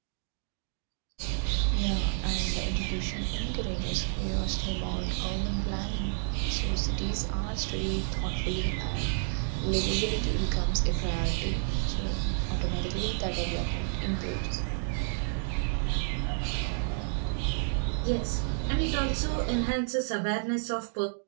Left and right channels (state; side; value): silent; left; digital silence